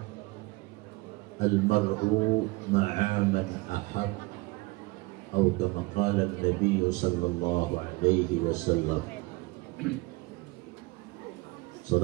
al-mar'u ma'a man ahab, atau kama qala an-nabiy sallallahu alaihi wasallam.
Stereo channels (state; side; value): quieter; left; 24.0 dB